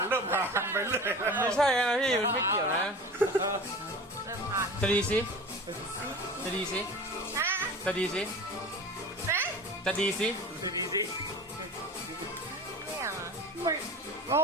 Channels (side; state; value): both; normal; correlation 0.36